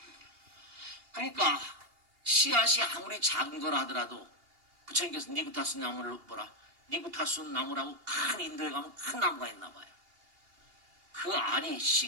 그러니까 씨앗이 아무리 작은 거라 하더라도 부처님께서 니구타스 나무를 뭐라? 니구타스 나무라고 큰 인도에 가면 큰 나무가 있나 봐요. 그 알이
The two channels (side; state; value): left; late; 2.8 ms